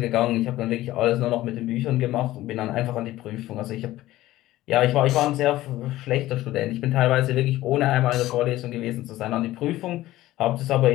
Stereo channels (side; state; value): right; quieter; 15.9 dB